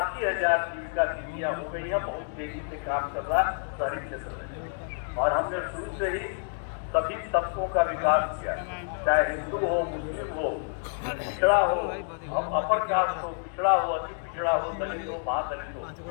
जीविका दीदियाँ हो गई है। बहुत तेजी से काम कर रहा है शहरी क्षेत्र में। और हमने शुरू से ही सभी तबकों का विकास किया, चाहे हिंदू हो, मुस्लिम हो, पिछड़ा हो, अपर कास्ट हो, पिछड़ा हो, अति पिछड़ा हो, दलित हो, महादलित हो,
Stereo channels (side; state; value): right; silent; 59 dB below the other